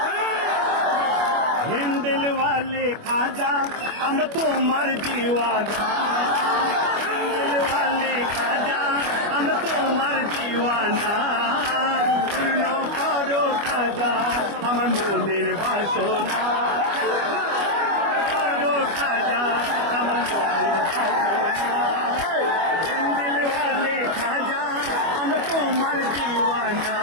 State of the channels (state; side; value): late; left; 25 ms